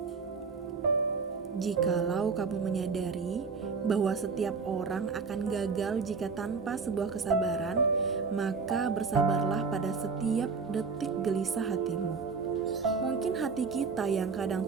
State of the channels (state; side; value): quieter; left; 5.0 dB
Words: Jikalau kamu menyadari bahwa setiap orang akan gagal jika tanpa sebuah kesabaran, maka bersabarlah pada setiap detik gelisah hatimu. Mungkin hati kita yang kadang